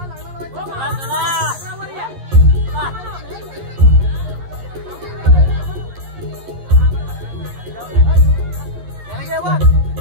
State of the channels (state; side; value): late; left; 11 ms